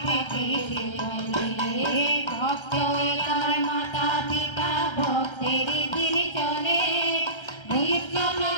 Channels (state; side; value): late; right; 1.3 ms